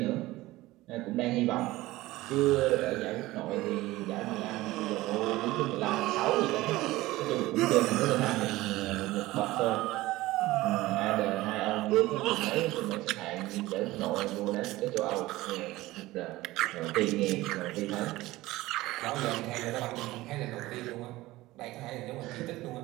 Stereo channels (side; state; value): left; quieter; 18.2 dB